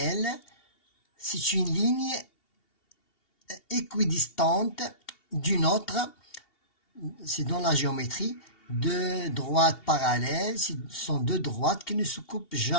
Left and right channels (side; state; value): right; late; 2.7 ms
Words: c'est une ligne équidistante d'une autre, c'est dans la géométrie, deux droites parallèles, ce sont deux droites qui ne se coupent